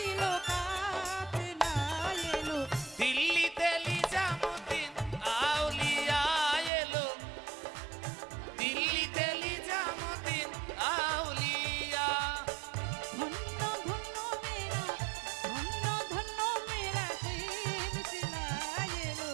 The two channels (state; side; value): drops out; left; at 6.7 s